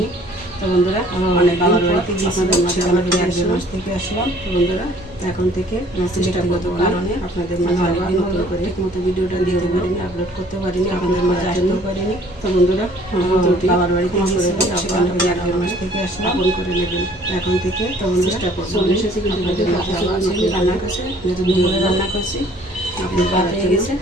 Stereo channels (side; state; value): both; normal; correlation 0.56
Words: তো বন্ধুরা, অনেক বাবার বাড়িতে আপনাদের মাঝে আবার ফিরে আসলাম, মাস থেকে আসলাম। তো বন্ধুরা, এখন থেকে ব্যক্তিগত কারণে আপনাদের মাঝে অনেকদিন নতুন করে ঠিকমতো ভিডিওটা দিতে পারিনি, আপলোড করতে পারিনি, আপনাদের মাঝে আসতেও পারিনি। তো বন্ধুরা, বাবার বাড়িতে আপনাদের 1 মাস থেকে আসলাম, ফোন করে নেবেন এখন থেকে। তো চেষ্টা করবো চলে এসেছি, কিন্তু রান্না করছে, যেহেতু দুপুরে রান্না করছি, আপনি ভাত হয়ে গেছে।